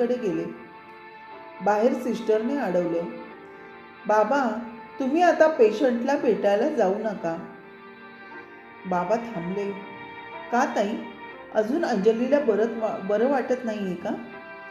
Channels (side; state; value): both; identical; correlation 1.00